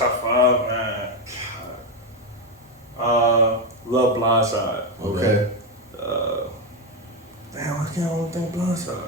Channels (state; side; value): normal; both; correlation 0.08